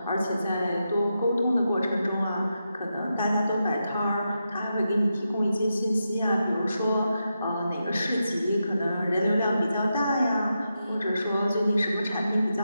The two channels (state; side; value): inverted; both; correlation -0.87